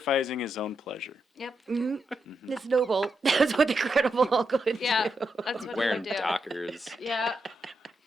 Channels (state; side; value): normal; both; correlation 0.84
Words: his own pleasure. Yep. It's noble. That's what the Credible Hulk would Yeah. do. That's what Wearing he would do. Dockers. Yeah.